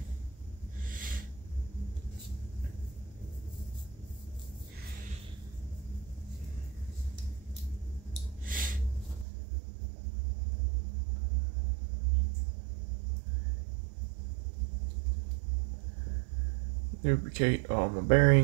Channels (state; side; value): drops out; left; at 9.2 s